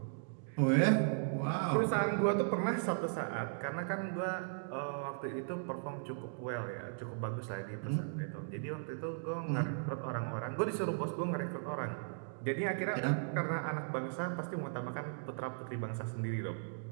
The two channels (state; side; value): silent; left; digital silence